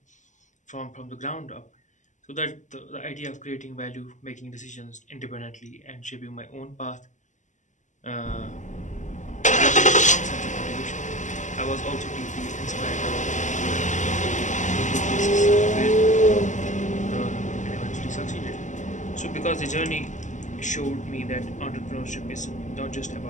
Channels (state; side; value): late; right; 0.36 ms